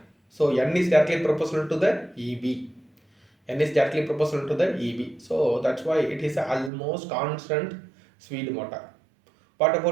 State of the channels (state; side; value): drops out; left; at 6.7 s